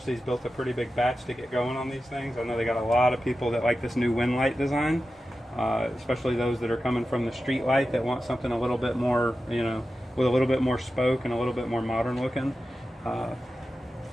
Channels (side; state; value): both; normal; correlation 0.92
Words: built a pretty big batch to get going on these things. I know they got a lot of people that like this new Win-Lite design, especially those that are coming from the street light that want something a little bit more, you know, with a little bit more spoke and a little bit more modern looking. All